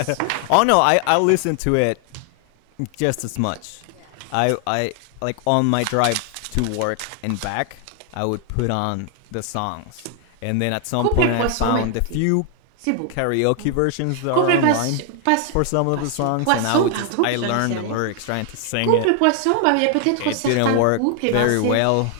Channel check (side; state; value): both; different; correlation 0.00